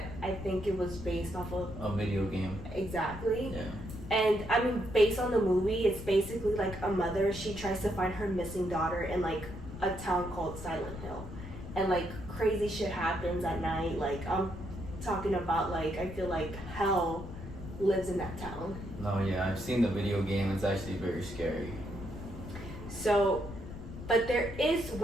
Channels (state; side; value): noise; left; rumble, 11 dB below the sound